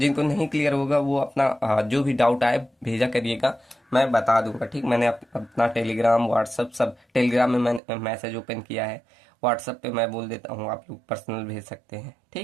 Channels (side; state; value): left; drops out; at 7.8 s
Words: नहीं क्लियर होगा वो अपना जो भी डाउट आए भेजा करिएगा, मैं बता दूंगा। ठीक, मैंने अपना टेलीग्राम व्हाट्सअप सब, टेलीग्राम में मैंने मैसेज ओपन किया है, व्हाट्सअप पे मैं बोल देता हूँ, आप लोग पर्सनल भेज सकते हैं।